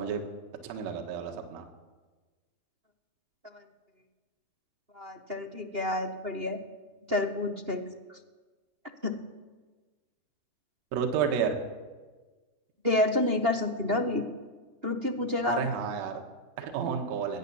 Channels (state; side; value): late; left; 2.8 ms